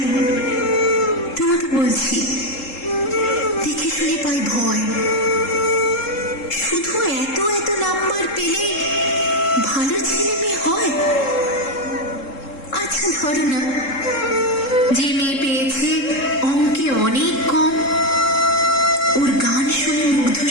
তোমাকে বলছি, দেখে শুনে পাই ভয়। শুধু এত এত নাম্বার পেলে ভালো ছেলে মেয়ে হয়? আচ্ছা ধরো না, যে মেয়ে পেয়েছে অঙ্কে অনেক কম, ওর গান শুনে মুগ্ধ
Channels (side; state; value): right; late; 3.7 ms